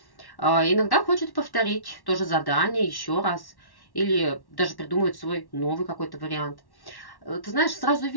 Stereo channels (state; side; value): late; right; 1.1 ms